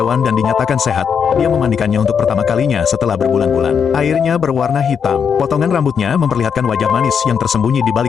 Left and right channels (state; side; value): quieter; right; 7.0 dB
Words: dan dinyatakan sehat, dia memandikannya untuk pertama kalinya setelah berbulan-bulan. Airnya berwarna hitam. Potongan rambutnya memperlihatkan wajah manis yang tersembunyi di